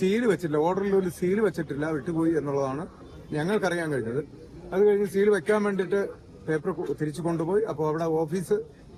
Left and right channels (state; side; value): identical; both; correlation 1.00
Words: വെച്ചിട്ടില്ല, ഓർഡറിൽ ഒരു സീല് വെച്ചിട്ടില്ല, വിട്ടുപോയി എന്നുള്ളതാണ് ഞങ്ങൾക്കറിയാൻ കഴിഞ്ഞത്. അത് കഴിഞ്ഞ് സീൽ വെക്കാൻ വേണ്ടിയിട്ട് പേപ്പർ തിരിച്ചു കൊണ്ടുപോയി. അപ്പോൾ അവിടെ ഓഫീസ്